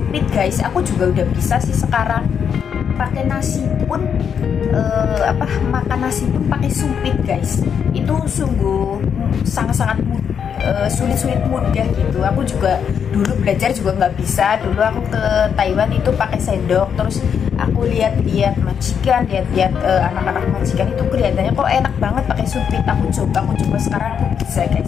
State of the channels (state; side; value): quieter; right; 7.5 dB